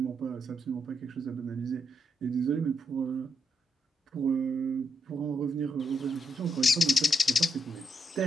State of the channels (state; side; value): normal; both; correlation 0.80